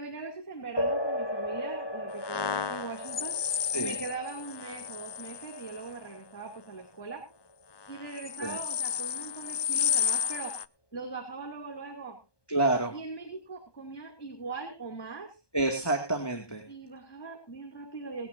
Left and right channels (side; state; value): right; late; 1.2 ms